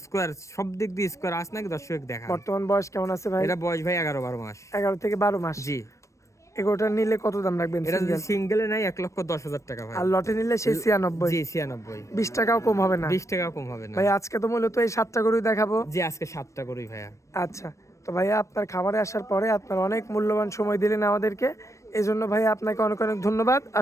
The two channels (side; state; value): right; late; 0.15 ms